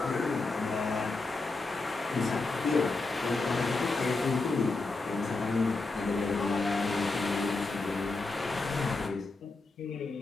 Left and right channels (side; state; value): right; quieter; 3.6 dB